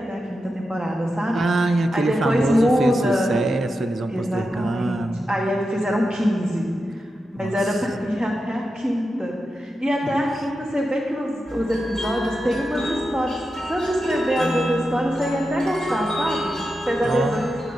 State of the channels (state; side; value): normal; both; correlation 0.89